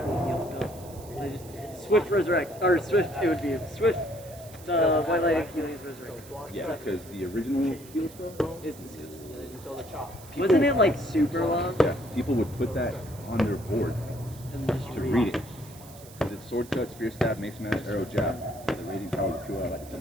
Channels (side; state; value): right; noise; hiss, 20 dB below the sound